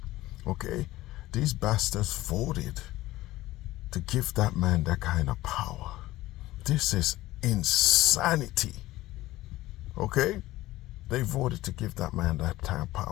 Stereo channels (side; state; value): right; quieter; 16.9 dB